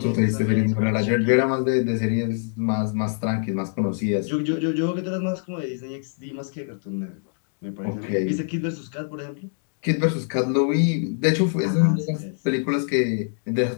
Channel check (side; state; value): right; silent; digital silence